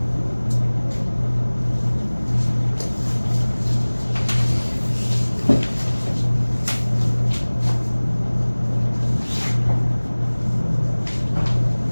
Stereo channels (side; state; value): both; inverted; correlation -1.00